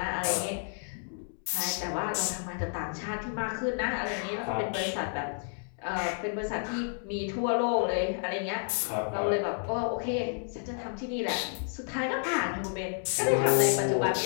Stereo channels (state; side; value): silent; right; 57 dB below the other